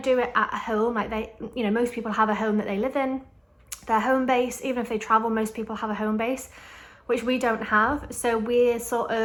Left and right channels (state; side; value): identical; both; correlation 1.00